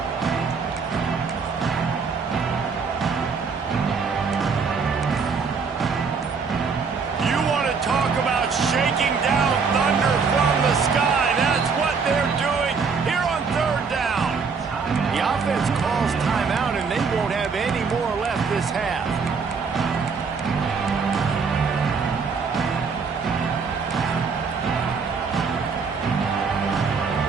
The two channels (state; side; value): quieter; left; 5.3 dB